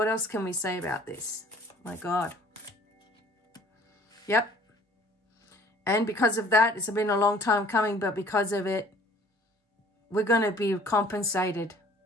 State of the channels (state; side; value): normal; both; correlation 0.53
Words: else can we say about this? My God. Yep. And because of that, it's been a long time coming, but because of it, we're going to be compensated.